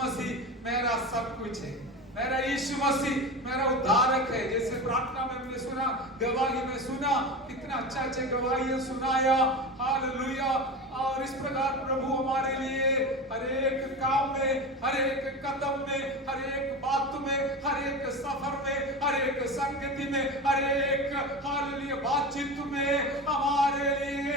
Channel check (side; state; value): both; normal; correlation 0.27